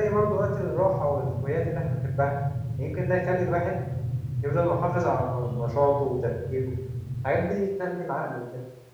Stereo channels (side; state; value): both; identical; correlation 1.00